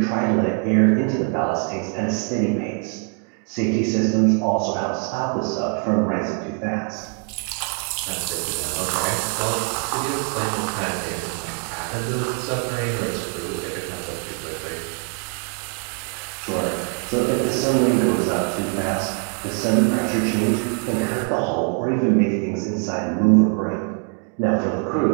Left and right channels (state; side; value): quieter; left; 34.4 dB